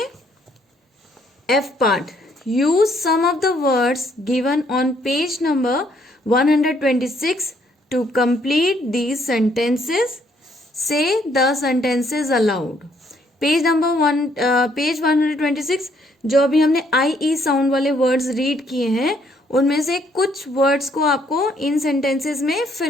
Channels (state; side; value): normal; both; correlation 0.68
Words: F part, use some of the words given on page number 126 to complete these sentences. Say the sentences aloud. Page 126, जो अभी हमने आई ई साउंड वाले words read किए हैं, उनमें से कुछ वर्ड्स को आपको इन सेंटेंसेस में